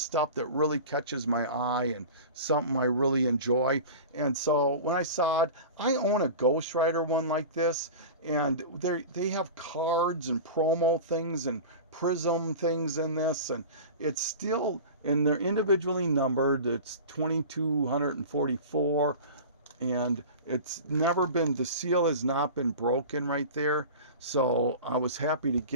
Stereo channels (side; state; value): both; inverted; correlation -0.34